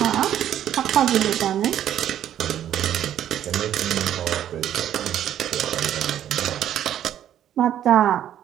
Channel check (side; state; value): left; quieter; 10.9 dB